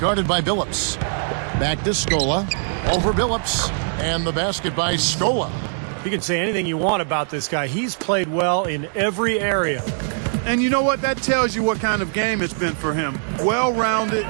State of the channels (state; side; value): silent; left; digital silence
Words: by Billups. Back to Scola. Over Billups. And the basket by Scola. You can say anything you want about this guy. He's played well in every area. And you know what? That tells you what kind of game it's been for him. Well-rounded,